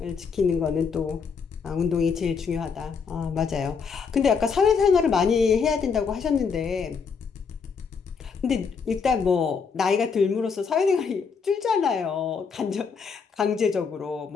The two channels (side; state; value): right; quieter; 5.7 dB